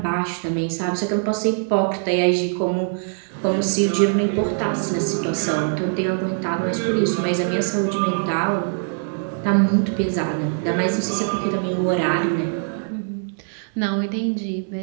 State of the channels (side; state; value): left; silent; 61 dB below the other